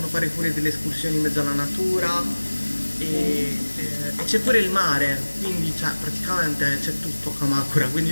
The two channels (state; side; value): inverted; both; correlation -1.00